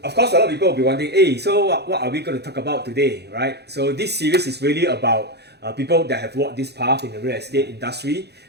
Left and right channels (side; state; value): left; late; 0.48 ms